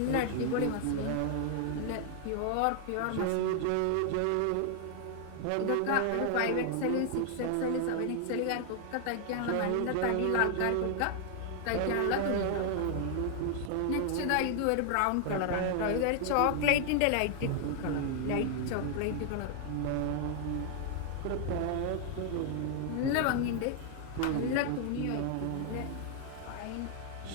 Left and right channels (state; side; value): different; both; correlation 0.00